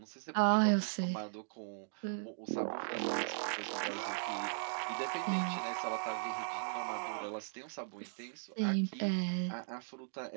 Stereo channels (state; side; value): silent; left; digital silence